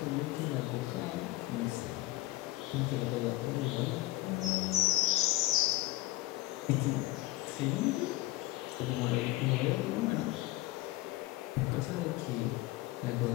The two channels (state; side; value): quieter; right; 18.1 dB